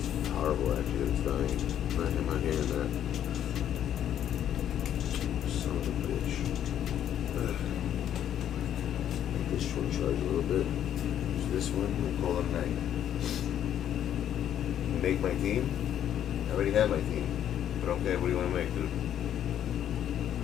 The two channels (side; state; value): right; quieter; 10.4 dB